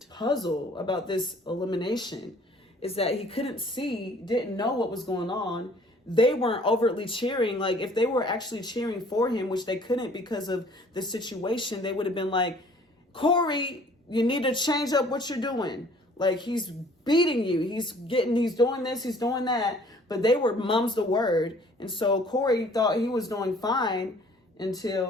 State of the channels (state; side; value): normal; both; correlation 0.55